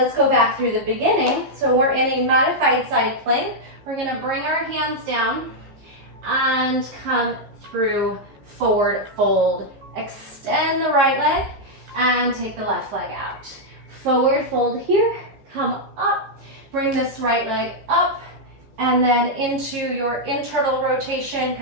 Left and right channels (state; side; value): late; left; 15 ms